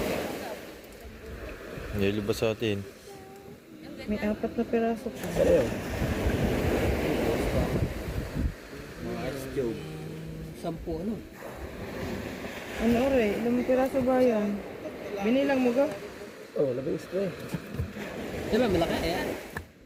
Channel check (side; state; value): both; identical; correlation 1.00